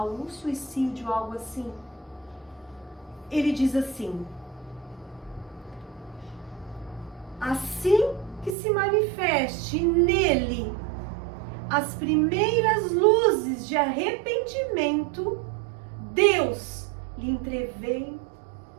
um suicídio, algo assim. Ele diz assim: assim que se manifeste nele as primeiras luzes de arrependimento, Deus lhe entrevê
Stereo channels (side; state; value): left; drops out; at 8.6 s